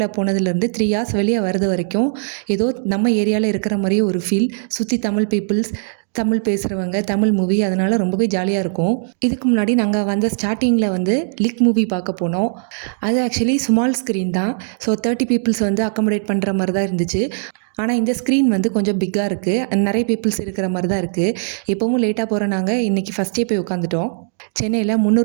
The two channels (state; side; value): silent; left; digital silence